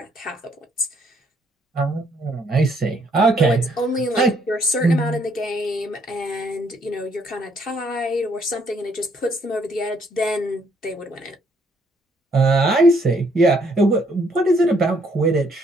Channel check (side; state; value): both; normal; correlation 0.68